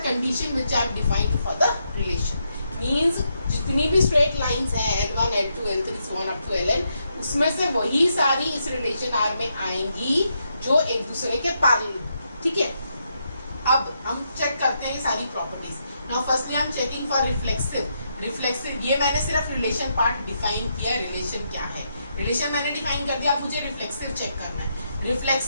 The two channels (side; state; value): both; inverted; correlation -0.80